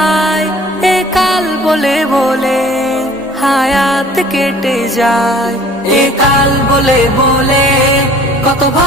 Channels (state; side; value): normal; both; correlation 0.50